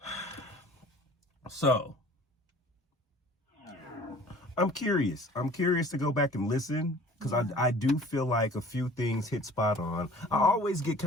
So, I'm curious. I'm curious to go back and listen because I do feel like a few things hit spot on. I always get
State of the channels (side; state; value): both; normal; correlation 0.48